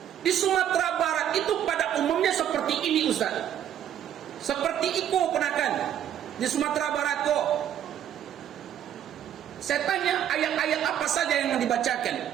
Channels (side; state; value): left; quieter; 10.3 dB